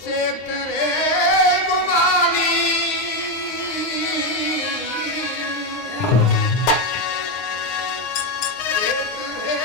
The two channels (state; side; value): late; right; 9.7 ms